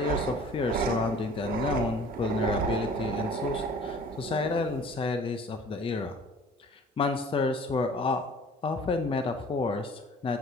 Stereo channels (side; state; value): both; normal; correlation 0.48